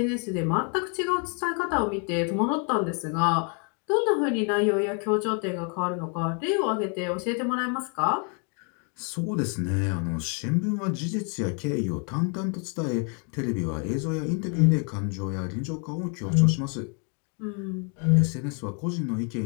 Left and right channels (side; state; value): right; quieter; 38.8 dB